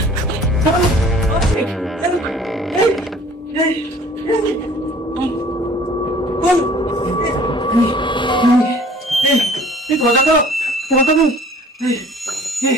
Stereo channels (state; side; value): normal; both; correlation 0.51